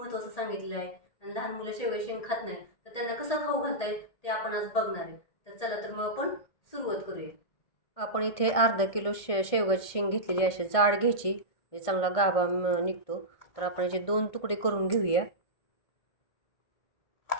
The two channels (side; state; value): right; late; 1.6 ms